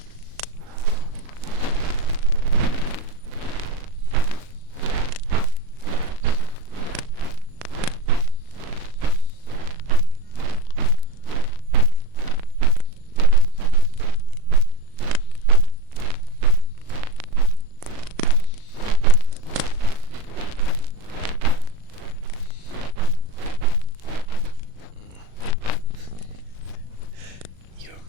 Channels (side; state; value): left; late; 38 ms